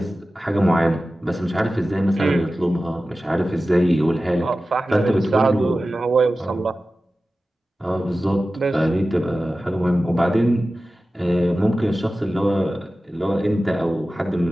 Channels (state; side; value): normal; both; correlation 0.95